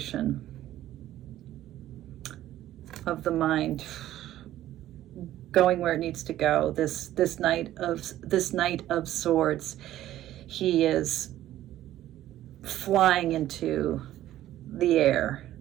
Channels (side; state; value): left; quieter; 13.5 dB